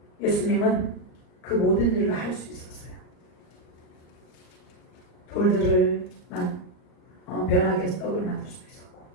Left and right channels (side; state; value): right; late; 38 ms